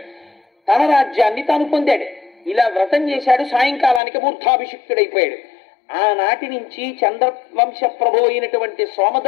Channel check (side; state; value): right; drops out; at 4.0 s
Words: తన రాజ్యాన్ని తాను పొందాడు. ఇలా వ్రతం చేశాడు. సాయంకాలానికి మూర్ధాభిషిక్తుడైపోయాడు. ఆనాటి నుంచి చంద్రవంశ ప్రభు అయినటువంటి